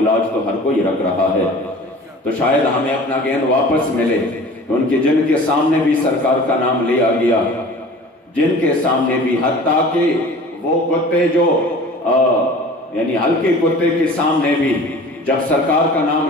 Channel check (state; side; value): normal; both; correlation 0.43